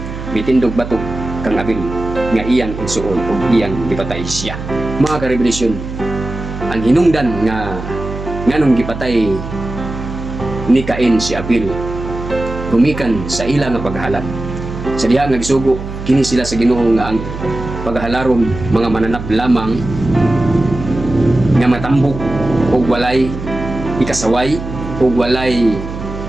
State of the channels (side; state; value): right; noise; hum, 9 dB below the sound